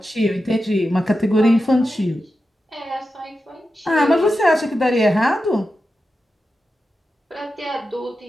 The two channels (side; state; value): both; normal; correlation 0.90